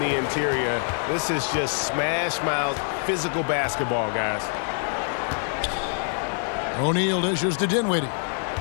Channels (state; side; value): silent; right; 55 dB below the other